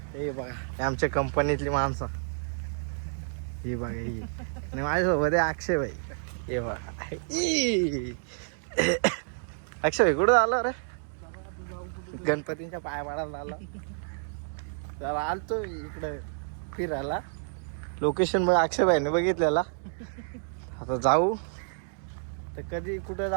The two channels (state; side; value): silent; left; digital silence